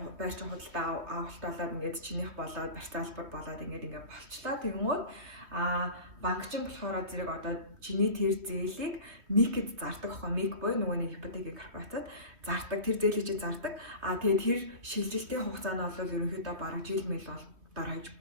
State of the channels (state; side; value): late; left; 3.2 ms